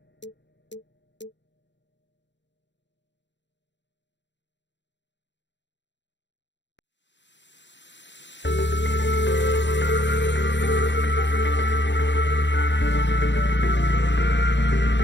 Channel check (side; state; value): right; late; 0.52 ms